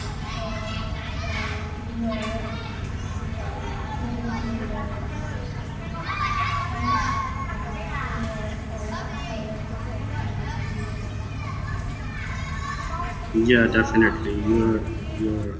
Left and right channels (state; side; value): identical; both; correlation 1.00